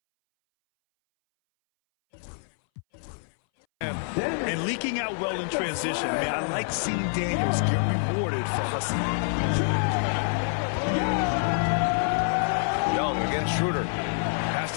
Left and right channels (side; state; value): right; silent; 60 dB below the other